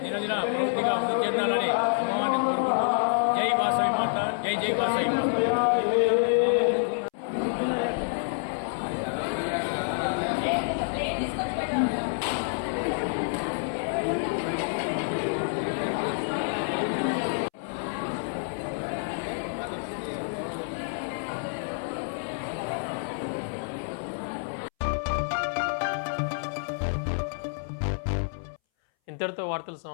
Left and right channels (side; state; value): right; silent; 59 dB below the other